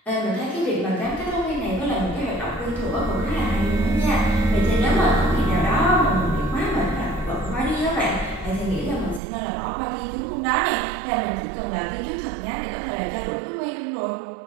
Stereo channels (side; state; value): left; drops out; at 9.2 s